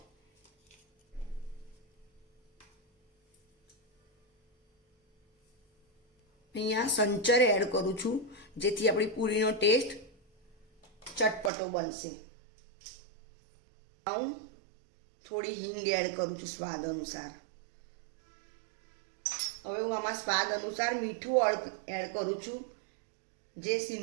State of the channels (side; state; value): left; drops out; at 11.5 s